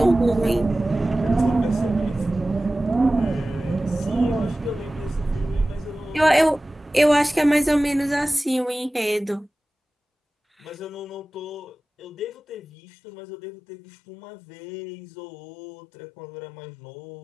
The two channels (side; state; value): right; drops out; at 12.6 s